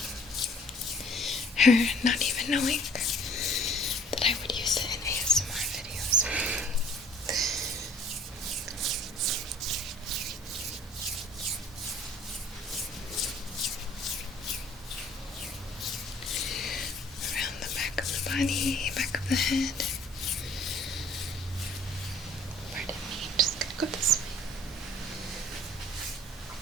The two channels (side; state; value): both; normal; correlation 0.54